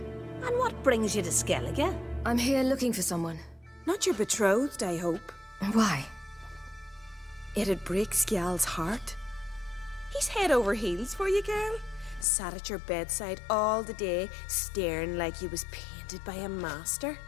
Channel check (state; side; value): drops out; right; at 12.2 s